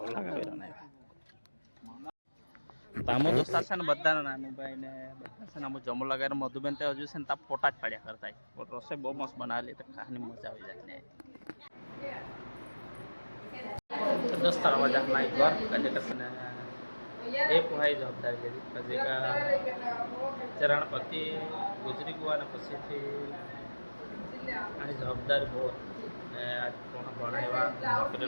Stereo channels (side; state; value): both; inverted; correlation -1.00